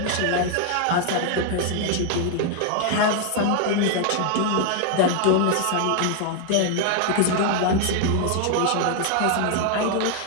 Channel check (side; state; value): both; different; correlation 0.00